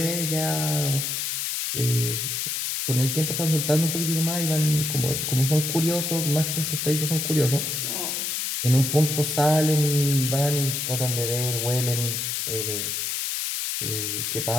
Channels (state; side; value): noise; left; hiss, 1 dB below the sound